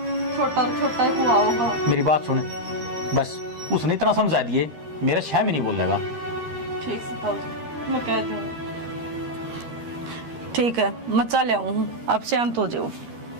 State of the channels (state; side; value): late; left; 13 ms